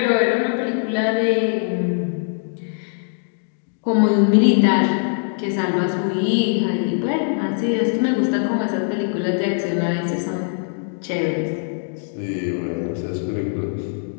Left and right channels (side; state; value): right; silent; 65 dB below the other